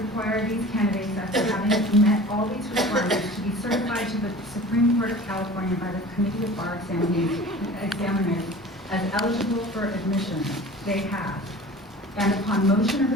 these candidates, after having met all these requirements, to be certified to the Supreme Court of California by the Committee of Bar Examiners as eligible for admission. They have. And upon motion of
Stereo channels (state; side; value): normal; both; correlation 0.41